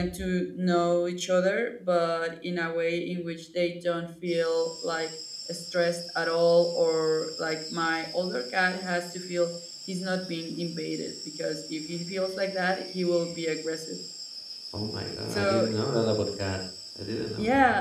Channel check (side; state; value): both; identical; correlation 1.00